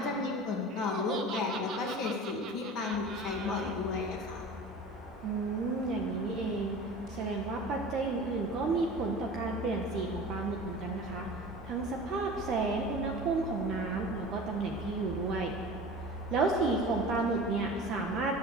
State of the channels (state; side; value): normal; both; correlation 0.38